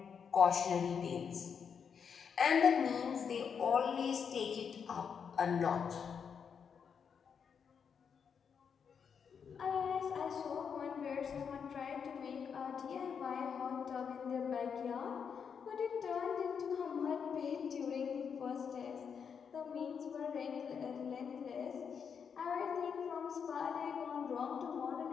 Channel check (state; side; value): quieter; right; 6.8 dB